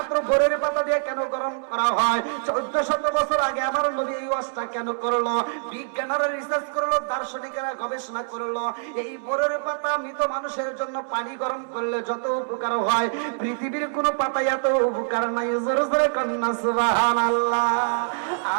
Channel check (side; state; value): left; silent; 62 dB below the other